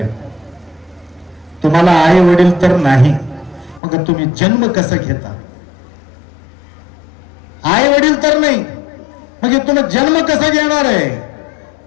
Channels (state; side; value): drops out; right; at 3.8 s